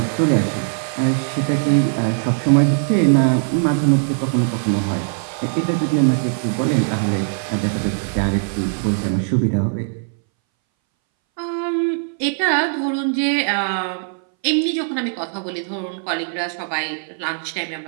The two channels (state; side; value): silent; left; 63 dB below the other